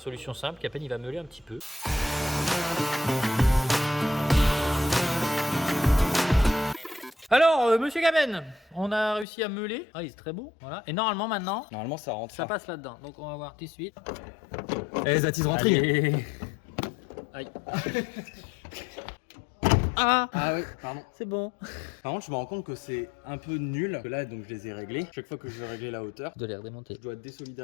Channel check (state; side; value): drops out; right; at 9.2 s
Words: simple, Capen il va meuler un petit peu. Alors, monsieur Capen, on a réussi à meuler. Ah, il est très beau. Voilà. Et normalement, maintenant, Normalement, ça rentre. ça passe là-dedans. Donc, on va voir tout de suite. Eh, that is rentré. Allez. Aïe. Ah, Ah oui, pardon. c'est bon. Par contre, je me rends compte que c'est un peu nul. Que là, donc, je les ai réglés. Chaque fois que je vais régler la hauteur, Je dois les redémonter. je dois